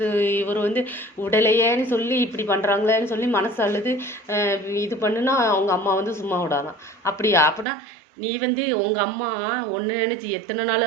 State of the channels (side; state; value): left; drops out; at 7.7 s